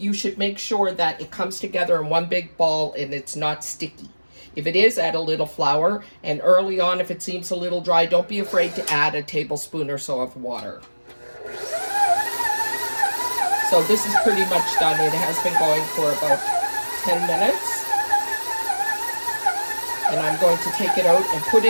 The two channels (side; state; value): both; inverted; correlation -1.00